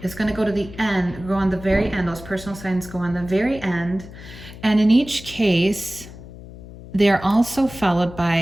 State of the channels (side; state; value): left; noise; hum, 16 dB below the sound